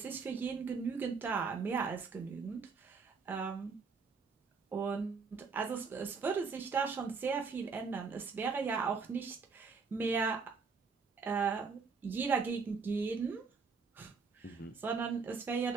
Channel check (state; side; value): quieter; left; 5.1 dB